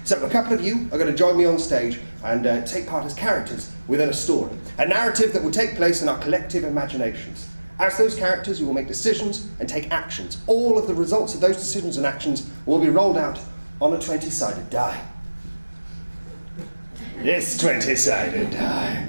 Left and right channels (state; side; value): inverted; both; correlation -1.00